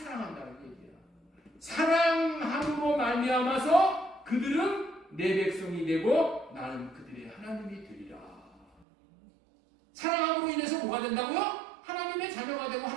얘기야. 사랑함으로 말미암아서 그들은 내 백성이 되고 나는 그들의 하나님이 되리라. 사랑함으로 인해서 뭐가 된다고요? 하나님의 자녀가 되고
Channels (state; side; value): drops out; left; at 8.8 s